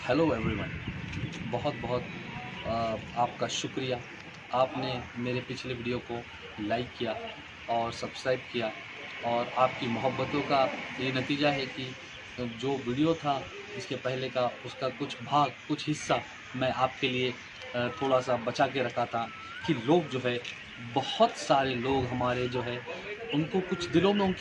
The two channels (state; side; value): identical; both; correlation 1.00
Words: Hello everyone. बहुत बहुत आपका शुक्रिया। आपने मेरे पिछले वीडियो को लाइक किया और सब्सक्राइब किया, और आपकी मोहब्बतों का ये नतीजा है कि जो वीडियो था इसके पहले का, उसका कुछ भाग, कुछ हिस्सा मैं आपके लिए थोड़ा सा बचा के रखा था कि लोग जो है, बहुत सारे लोग हमारे जो है, उनको कुछ दिलों में